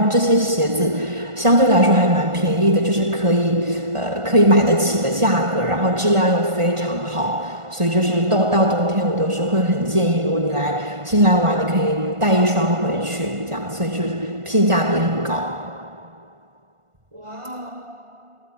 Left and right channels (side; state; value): left; late; 1.5 ms